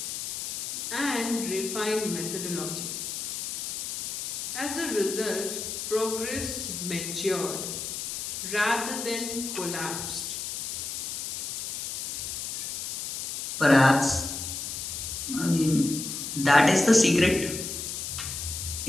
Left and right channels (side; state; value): left; noise; hiss, 4 dB below the sound